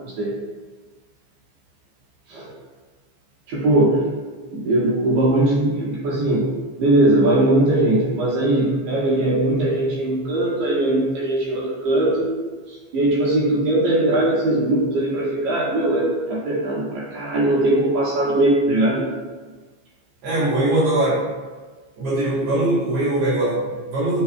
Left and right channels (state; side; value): late; left; 15 ms